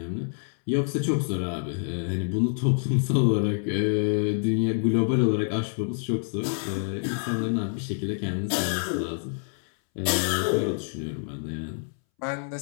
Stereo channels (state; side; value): silent; right; 60 dB below the other